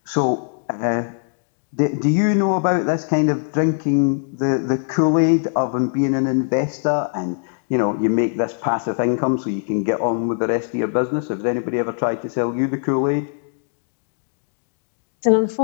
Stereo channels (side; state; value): right; silent; digital silence